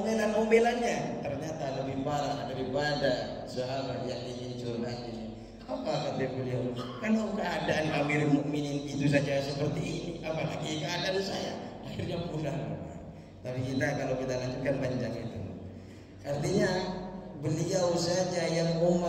Ternyata lebih parah daripada sahabat yang ingin curhat ini. Apa kata beliau? Kalau keadaan Amirul Mukminin itu saja seperti ini, apalagi keadaan saya. Akhirnya pulang. Tapi kalau kita lanjutkan panjang itu. Artinya beliau saja yang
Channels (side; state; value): both; identical; correlation 1.00